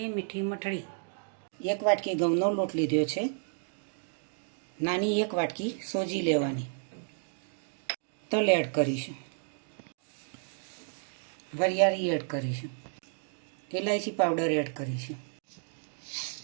મીઠી મઠડી। 1 વાટકી ઘઉંનો લોટ લીધો છે। નાની 1 વાટકી સોજી લેવાની। તલ એડ કરીશું, વરિયાળી એડ કરીશું, ઇલાયચી પાવડર એડ કરીશું,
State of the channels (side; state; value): left; silent; digital silence